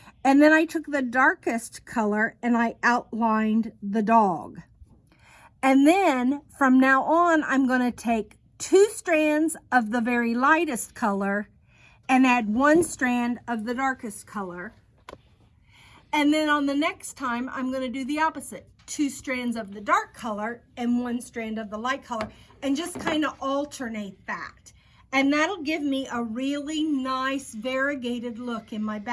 And then I took the darkest color and I outlined the dog. And then from now on, I'm going to take 2 strands of the very lightest color and add 1 strand of the darkest color. And then on the next time, I'm going to do the opposite. 2 strands of the dark color and 1 strand of the light color, and just kind of alternate that. And that'll give me a really nice variegated look in my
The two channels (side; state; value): both; identical; correlation 1.00